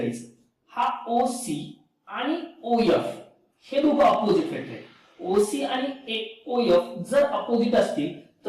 हा ओसी आणि ओएफ हे दोघं अपोजिट वेक्टर आहेत. ओसी आणि ओएफ जर अपोजिट असतील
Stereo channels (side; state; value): both; identical; correlation 1.00